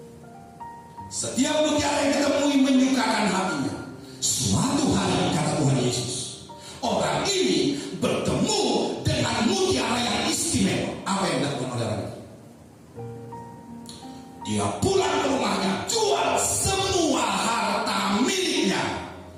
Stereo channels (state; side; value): identical; both; correlation 1.00